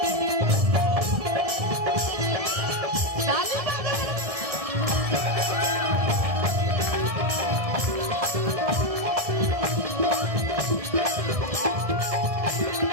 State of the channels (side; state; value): left; late; 1.7 ms